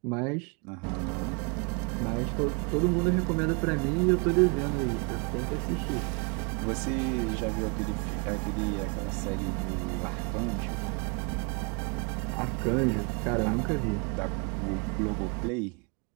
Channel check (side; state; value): left; quieter; 34.1 dB